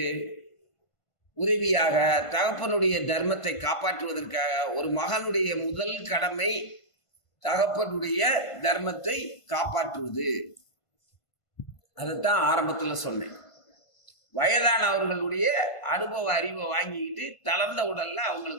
உதவியாக, தகப்பனுடைய தர்மத்தை காப்பாற்றுவதற்காக, ஒரு மகனுடைய முதல் கடமை தகப்பனுடைய தர்மத்தை காப்பாற்றுவது. அதைத்தான் ஆரம்பத்துல சொன்னேன். வயதானவர்களுடைய அனுபவ அறிவை வாங்கிக்கிட்டு தளர்ந்த உடல்ல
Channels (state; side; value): late; right; 1.5 ms